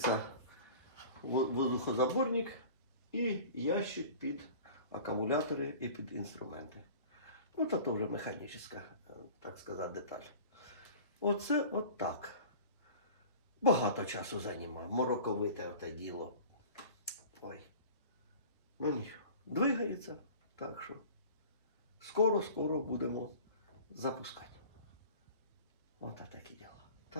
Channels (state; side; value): inverted; both; correlation -0.42